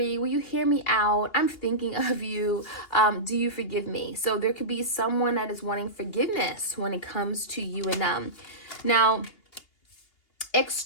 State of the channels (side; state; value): right; late; 2.8 ms